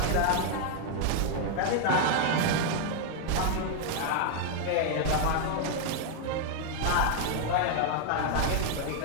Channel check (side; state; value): both; different; correlation 0.00